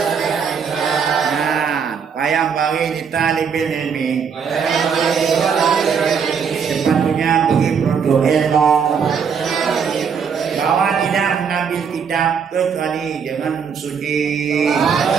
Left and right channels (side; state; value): left; quieter; 6.6 dB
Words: Nah, yang yang bagi di talibil ilmi. Sepatutnya bagi produk ilmu bahwa tidak mengambil kitab kecuali dengan suci.